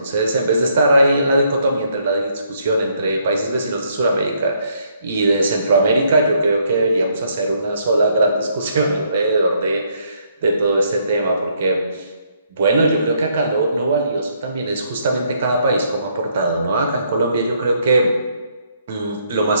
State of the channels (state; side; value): inverted; both; correlation -0.70